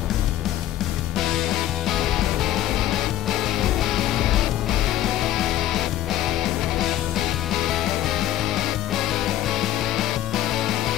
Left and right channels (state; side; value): quieter; right; 13.3 dB